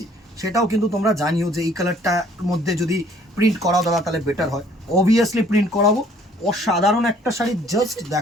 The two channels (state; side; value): normal; both; correlation 0.59